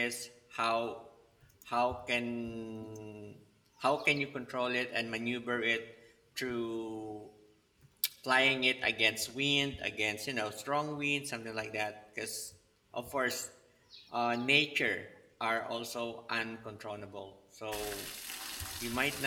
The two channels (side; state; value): both; identical; correlation 1.00